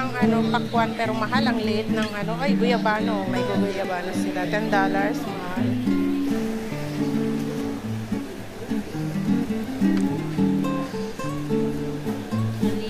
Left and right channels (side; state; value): both; identical; correlation 1.00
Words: ano, pakwan pero mahal ang liit ng ano, ay guyabano, may guyabano sila, $10 mahal.